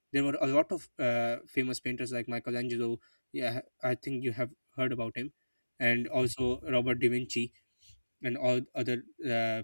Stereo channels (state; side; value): inverted; both; correlation -1.00